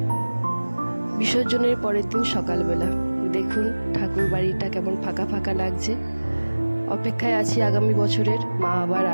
বিসর্জনের পরের দিন সকালবেলা দেখুন ঠাকুর বাড়িটা কেমন ফাঁকা ফাঁকা লাগছে। অপেক্ষায় আছি আগামী বছরের, মা আবার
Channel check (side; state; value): both; inverted; correlation -1.00